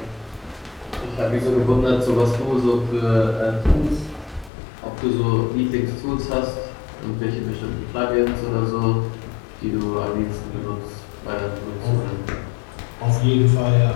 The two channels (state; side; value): drops out; right; at 4.5 s